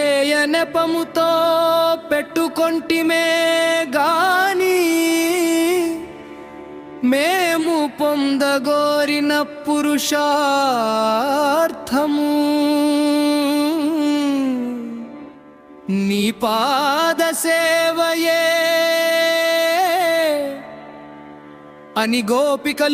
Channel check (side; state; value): both; identical; correlation 1.00